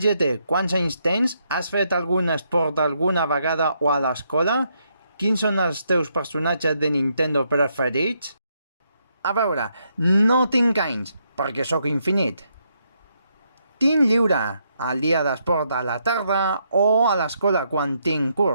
GT. Quants anys tens? Has fet algun esport alguna vegada o a l'escola? Quins són els teus personatges de Nintendo preferits? A veure, no tinc anys, perquè sóc infinit. Tinc lliure el dia d'esport a la tarda o a l'escola quan tinc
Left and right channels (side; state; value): both; inverted; correlation -0.77